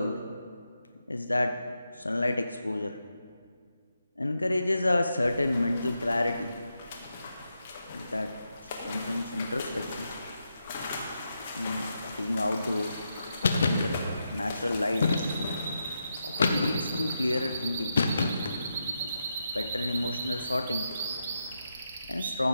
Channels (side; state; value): both; inverted; correlation -0.85